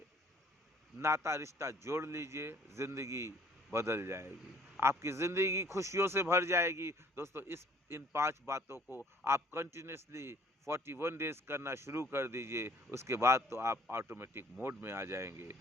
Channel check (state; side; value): normal; both; correlation 0.56